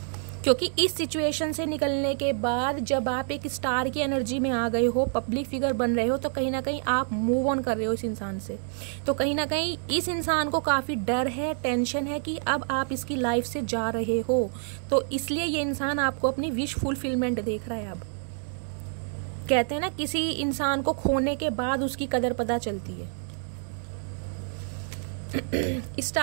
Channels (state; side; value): silent; left; 56 dB below the other